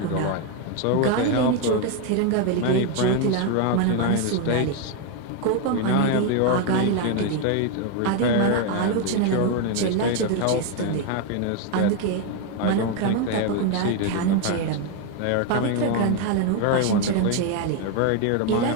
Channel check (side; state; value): both; different; correlation 0.01